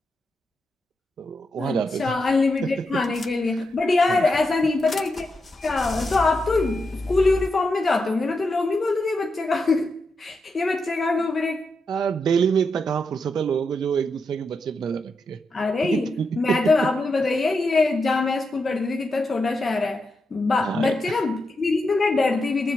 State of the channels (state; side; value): normal; both; correlation 0.85